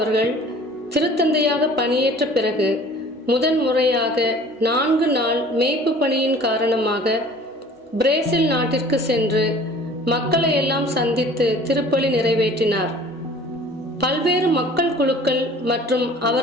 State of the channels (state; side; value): normal; both; correlation 0.48